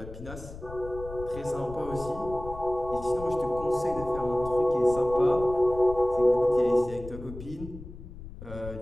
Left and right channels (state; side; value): noise; left; rumble, 13 dB below the sound